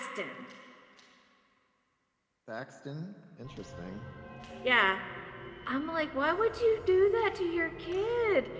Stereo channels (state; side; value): identical; both; correlation 1.00